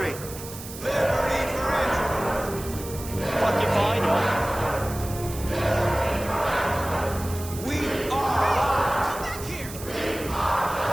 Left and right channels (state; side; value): noise; right; hiss, 13 dB below the sound